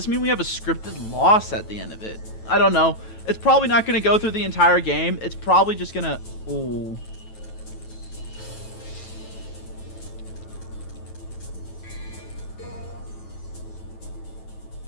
mean we have a scripted loss at the end of it? I don't know. It's probably not going to go through the entire game. It's probably just going to... Ooh.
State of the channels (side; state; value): right; late; 9.2 ms